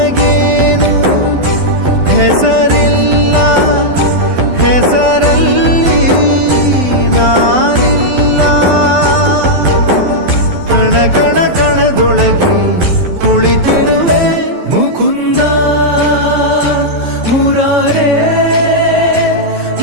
ಹೆಸರಿಲ್ಲ ಹೆಸರಲ್ಲಿ ನಾನಿಲ್ಲ ಕಣ ಕಣ ಕಣದೊಳಗೆ ಕುಳಿತಿರುವೆ ಮುಕುಂದ ಮುರಾರೇ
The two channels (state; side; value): late; left; 12 ms